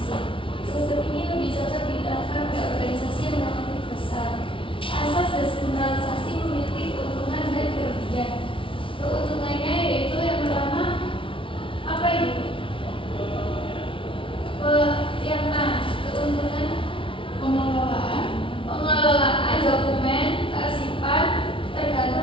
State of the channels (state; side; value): late; right; 0.25 ms